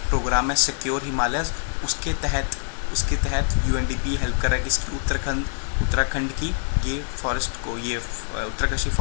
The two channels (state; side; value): silent; right; digital silence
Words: प्रोग्राम है सिक्योर हिमालयस, उसके तहत UNDP हेल्प कर रहा है किसकी? उत्तराखंड की ये फॉरेस्ट को, ये उत्तरकाशी